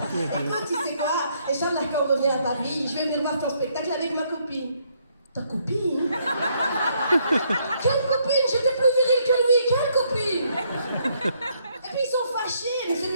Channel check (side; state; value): both; inverted; correlation -0.71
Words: Écoute, tu sais quoi? Inch'Allah, quand on revient à Paris, je vais venir voir ton spectacle avec ma copine. Ta copine? Quelle copine? J'étais plus virile que lui, quelle copine? Et puis ils sont fâchés, mais